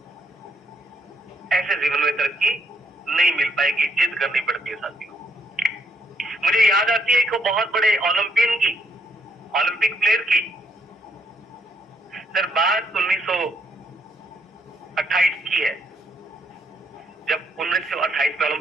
ऐसे जीवन में तरक्की नहीं मिल पाएगी, जिद करनी पड़ती है साथियों। मुझे याद आती है एक बहुत बड़े ओलंपियन की, ओलंपिक प्लेयर की। सर बात 1928 की है, जब 1928 में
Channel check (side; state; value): both; normal; correlation 0.73